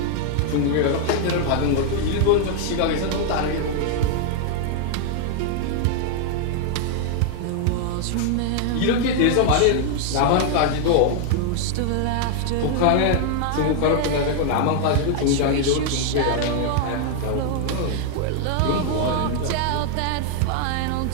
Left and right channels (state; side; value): different; both; correlation 0.00